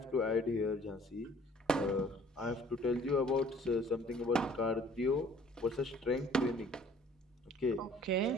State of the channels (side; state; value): both; normal; correlation 0.54